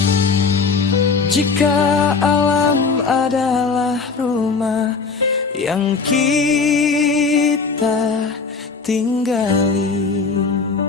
Jika alam adalah rumah yang kita tinggali,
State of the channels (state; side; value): quieter; right; 4.8 dB